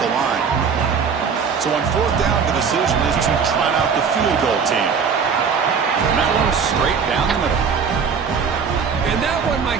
line. So on 4th down, the decision is to try out the field goal team. And that one straight down the middle. And that one, my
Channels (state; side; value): quieter; left; 6.1 dB